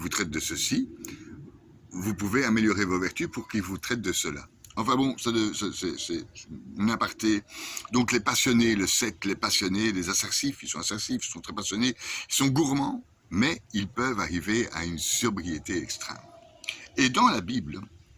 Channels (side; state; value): both; identical; correlation 1.00